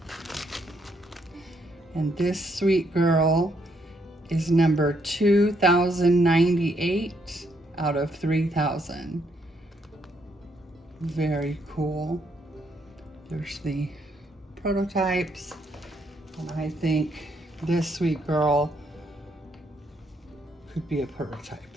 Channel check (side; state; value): both; normal; correlation 0.73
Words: And this sweet girl is number 2098 out of 3,000. Very cool. There's the prototypes, and I think this sweet girl could be a prototype